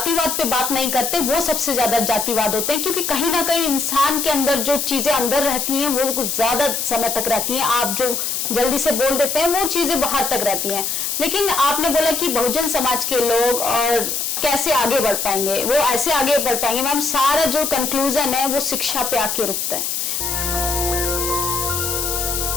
पे बात नहीं करते वो सबसे ज्यादा जातिवाद होते हैं, क्योंकि कहीं ना कहीं इंसान के अंदर जो चीजें अंदर रहती हैं वो कुछ ज्यादा समय तक रहती हैं। आप जो जल्दी से बोल देते हैं वो चीजें बाहर तक रहती हैं। लेकिन आपने बोला कि बहुजन समाज के लोग और कैसे आगे बढ़ पाएंगे, वो ऐसे आगे बढ़ पाएंगे मैम, सारा जो कंक्लूजन है वो शिक्षा पे आके रुकता है।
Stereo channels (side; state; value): left; noise; hiss, 1 dB below the sound